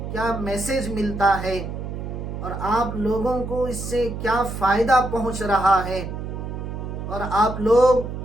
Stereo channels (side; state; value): right; noise; hum, 6 dB below the sound